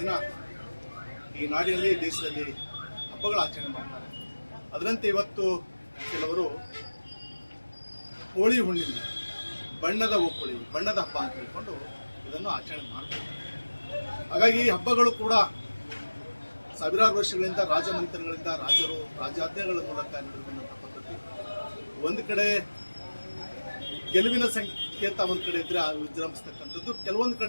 ಈ ನಾಡಿನಲ್ಲಿ ದೇಶದಲ್ಲಿ ಹಬ್ಬಗಳ ಆಚರಣೆ ಮಾಡ್ತಾರೆ. ಅದರಂತೆ ಇವತ್ತು ಕೆಲವರು ಹೋಳಿ ಹುಣ್ಣಿಮೆ, ಬಣ್ಣದ ಒಪ್ಪಳಿ, ಬಣ್ಣದ ಹಬ್ಬ ಅಂತ ಹೇಳ್ಕೊಂಡು ಇದನ್ನು ಆಚರಣೆ ಮಾಡ್ತಾರೆ. ಹಾಗಾಗಿ ಈ ಹಬ್ಬಗಳು ಕೂಡ ಸಾವಿರಾರು ವರ್ಷಗಳಿಂದ ರಾಜಮಂತ್ರಿಗಳಿಂದ ರಾಜರು ರಾಜಾಜ್ಞೆಗಳ ಮೂಲಕ ನಡೆದಂಥ ಪದ್ಧತಿ. ಒಂದು ಕಡೆ ಗೆಲುವಿನ ಸಂಕೇತ ಒಂದು ಕಡೆ ಇದ್ರೆ ವಿಜೃಂಭಿಸ್ತಕ್ಕಂಥದ್ದು, ಕೆಲವೊಂದು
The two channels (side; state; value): both; inverted; correlation -1.00